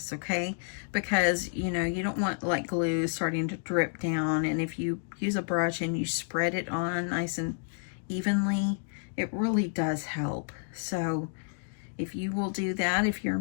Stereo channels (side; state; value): right; silent; digital silence